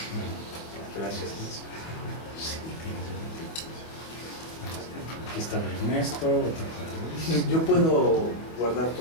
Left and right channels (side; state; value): right; late; 25 ms